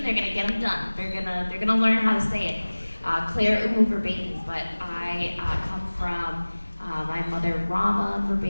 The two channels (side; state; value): both; inverted; correlation -1.00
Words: They're gonna get them done. They're gonna learn how to say it. Claire Verbeek, but I come from my mother Rama